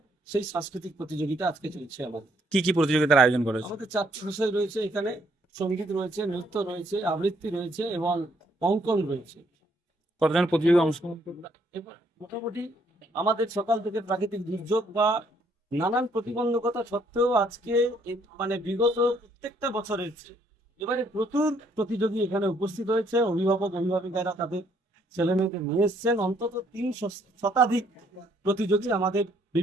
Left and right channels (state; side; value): normal; both; correlation 0.68